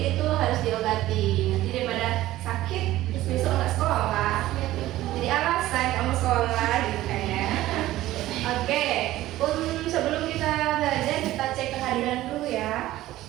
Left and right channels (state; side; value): quieter; left; 15.5 dB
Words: itu harus diobati. Nanti daripada sakit, terus besok nggak sekolah. Jadi alasan kamu sekolah gitu kayaknya. Oke, sebelum kita belajar kita cek kehadiran dulu ya.